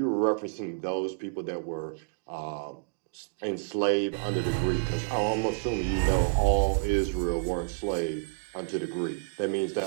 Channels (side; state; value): left; silent; digital silence